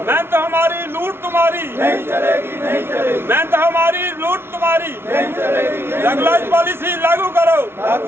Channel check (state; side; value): late; left; 0.12 ms